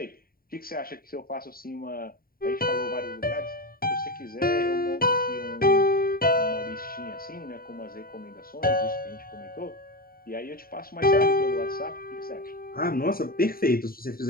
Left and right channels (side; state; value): right; late; 0.43 ms